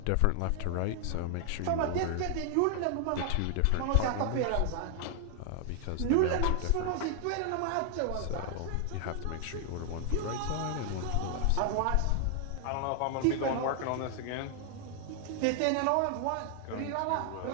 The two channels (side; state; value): both; different; correlation 0.00